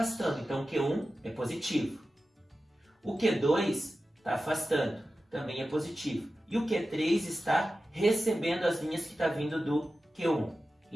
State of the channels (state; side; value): normal; both; correlation 0.93